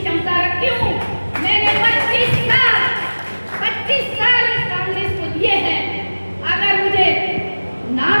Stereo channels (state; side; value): inverted; both; correlation -1.00